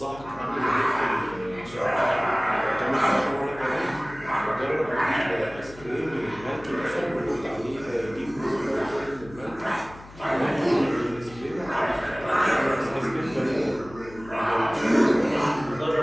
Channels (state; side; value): noise; left; hum, 19 dB below the sound